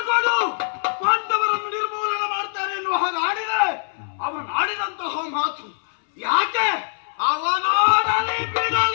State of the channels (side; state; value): right; silent; 63 dB below the other